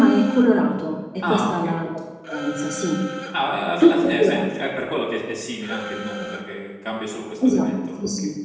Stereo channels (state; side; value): identical; both; correlation 1.00